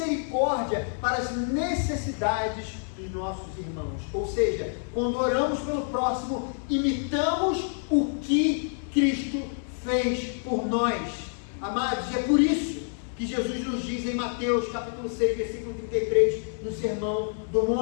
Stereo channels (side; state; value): right; silent; digital silence